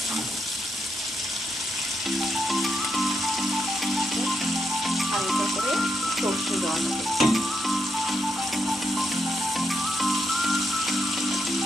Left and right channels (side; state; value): both; normal; correlation 0.82